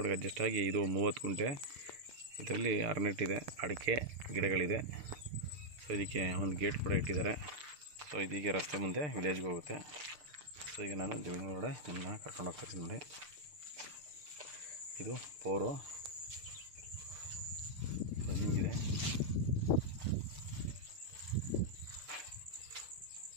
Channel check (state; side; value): late; left; 6.7 ms